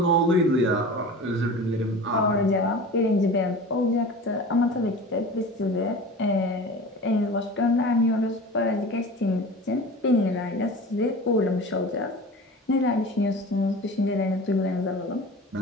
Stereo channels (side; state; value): both; normal; correlation 0.36